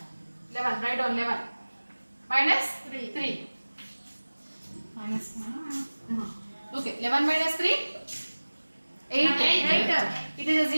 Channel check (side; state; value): both; inverted; correlation -1.00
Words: 11. Write down 11 minus 3. Minus okay, 11 minus 3 8. It is a